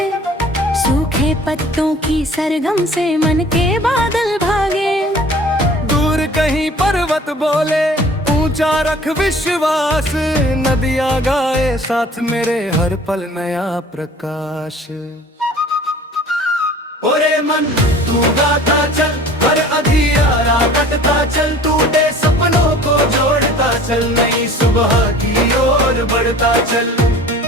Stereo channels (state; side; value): normal; both; correlation 0.47